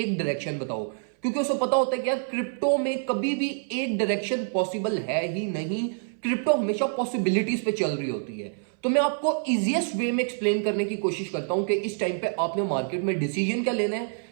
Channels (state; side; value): silent; left; 58 dB below the other